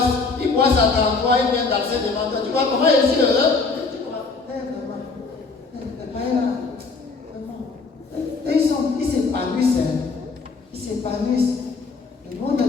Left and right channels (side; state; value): right; quieter; 4.3 dB